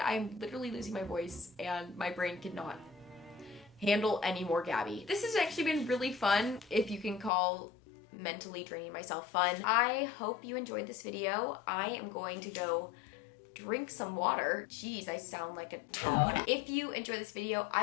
literally losing my voice and my brain cannot handle any more Gabbie. This has actually been really fun, if you can call mentally draining myself fun. I hope you enjoyed this video. I am going to go drink some water. Jeez, I sound like a toad. If you enjoy this video,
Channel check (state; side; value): drops out; right; at 7.3 s